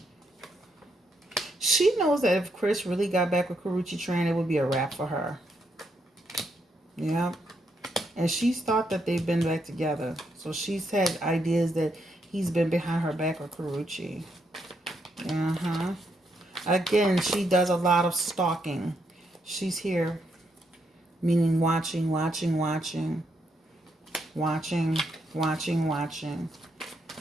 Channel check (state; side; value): normal; both; correlation 0.78